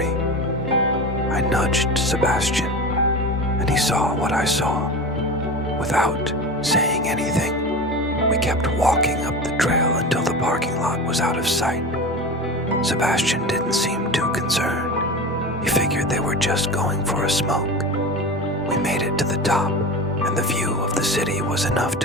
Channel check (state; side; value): normal; both; correlation 0.29